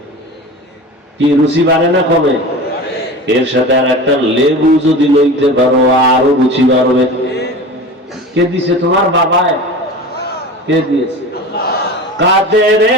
কি রুচি বাড়ে না কমে? এর সাথে আর একটা লেবু যদি লইতে পারো, আরো রুচি বাড়বে। কে দিছে? তোমার বাবায়। কে দিয়েছে? কাদের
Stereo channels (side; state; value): both; normal; correlation 0.34